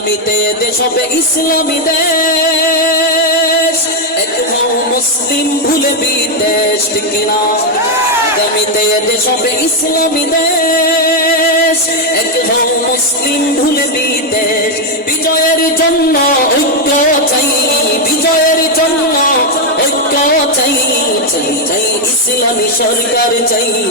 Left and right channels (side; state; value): both; normal; correlation 0.02